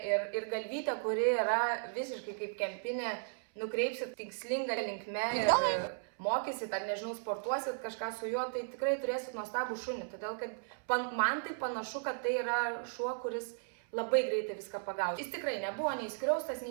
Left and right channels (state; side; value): silent; left; 54 dB below the other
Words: ir galvytę, kuri yra visiškai kaip kempinė, nukreipsit tikslingą linkme ir mokysit, ar nežinau, sportuosit kažką su juo, tai tikrai turėsit nuostabų šunį. Todėl, kad man tai panašu, kad tai yra šuo, kuris labai greitai viską pagaus. Jis tikrai nebuvo nei skriaustas,